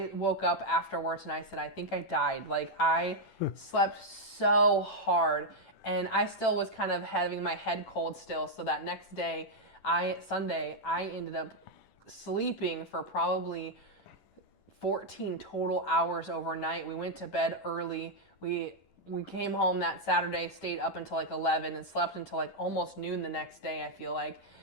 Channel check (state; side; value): late; right; 10 ms